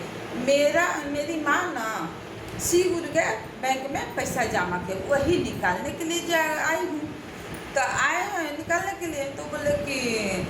मेरी माँ ना श्री गुरु के बैंक में पैसा जमा के वही निकालने के लिए आई हूँ। तो आए हैं निकालने के लिए। तो बोले कि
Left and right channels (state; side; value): identical; both; correlation 1.00